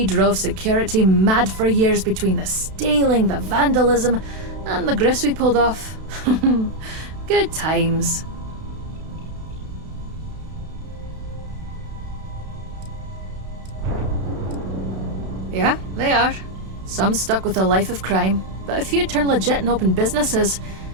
drove security mad for years between the stealing, the vandalism, and the grifts we pulled off. Good times. Yeah, they are. Some stuck with a life of crime, but a few turned legit and opened businesses,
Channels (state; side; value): late; left; 32 ms